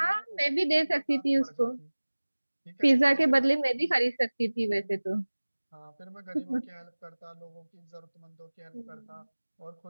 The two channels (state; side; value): inverted; both; correlation -1.00